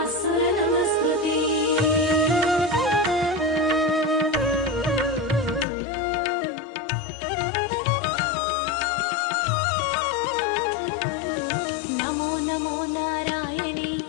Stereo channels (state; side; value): drops out; right; at 5.7 s